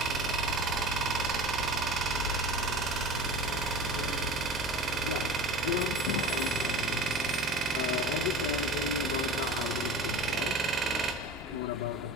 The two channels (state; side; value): normal; both; correlation 0.35